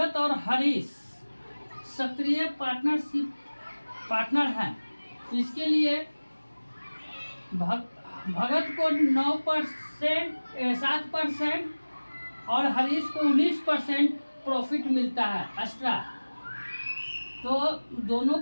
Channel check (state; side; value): inverted; both; correlation -1.00